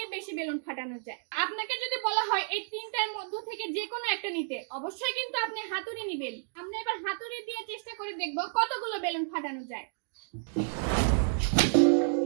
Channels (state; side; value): silent; left; digital silence